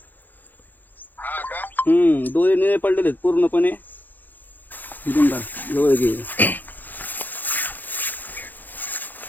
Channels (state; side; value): late; right; 0.086 ms